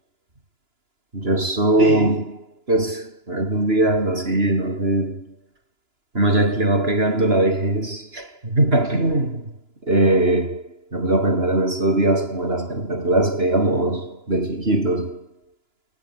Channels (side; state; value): left; late; 2.9 ms